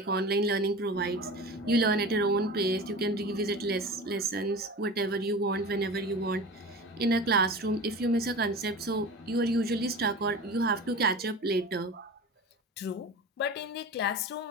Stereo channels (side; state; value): both; normal; correlation 0.33